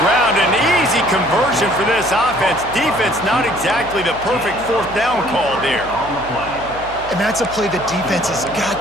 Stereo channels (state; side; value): noise; right; hum, 16 dB below the sound